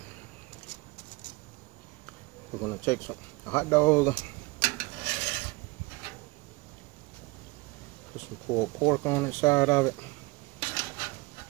We're gonna take a hot dog, Some pulled pork on the side of it.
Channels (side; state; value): left; quieter; 24.4 dB